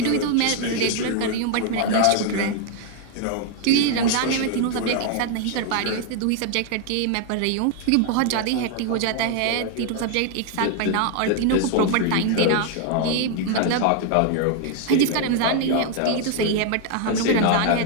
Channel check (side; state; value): both; different; correlation 0.00